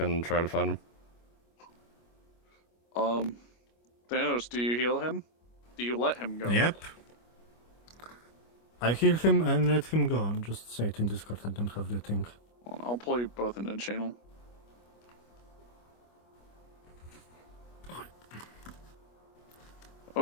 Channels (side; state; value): right; late; 25 ms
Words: try to find him. Thanos, do you heal him? Do you let him go? Yep. I heal him and let him go. Just say it in Discord, I don't have the thing. I'll pull you both into the channel.